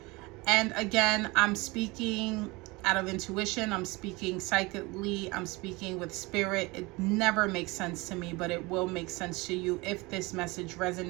And again, I'm speaking out of intuition, I'm speaking psychically, I'm speaking with spirit. It never makes sense to me, but it will make sense to you if this message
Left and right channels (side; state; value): left; quieter; 24.1 dB